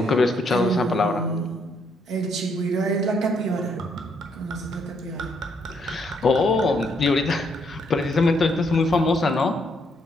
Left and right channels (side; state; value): both; normal; correlation 0.72